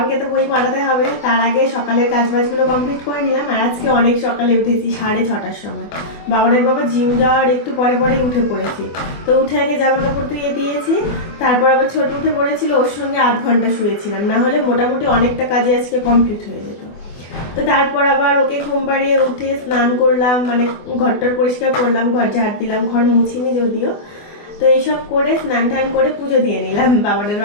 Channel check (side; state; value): right; late; 24 ms